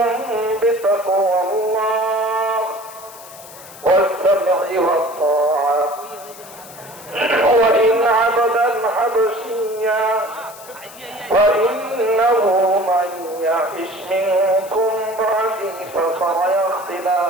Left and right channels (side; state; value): left; noise; hiss, 18 dB below the sound